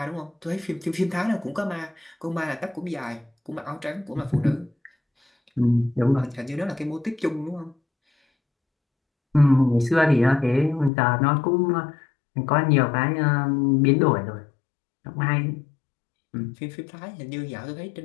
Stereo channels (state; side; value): drops out; right; at 10.9 s